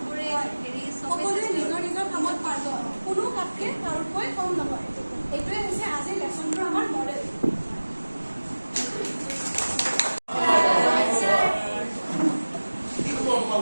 সকলোৱে নিজৰ নিজৰ কামত পাৰ্গত, কোনো কামকে কাৰোতকৈ কম নহয়। এইটোৱে হৈছে আজিৰ লেচনটোৰ আমাৰ মডেল।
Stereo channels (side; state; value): both; inverted; correlation -1.00